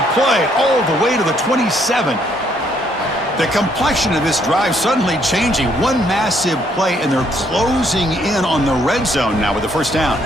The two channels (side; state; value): both; normal; correlation 0.69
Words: play all the way to the 27. The complexion of this drive suddenly changing. One massive play, and they're closing in on the red zone now with the first down.